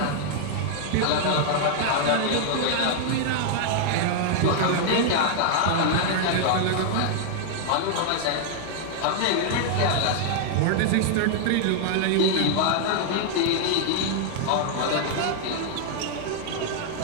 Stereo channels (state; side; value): different; both; correlation -0.01